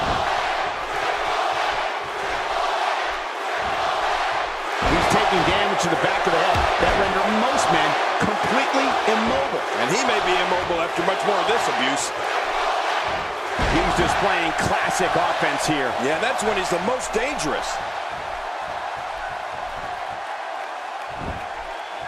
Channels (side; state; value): both; identical; correlation 1.00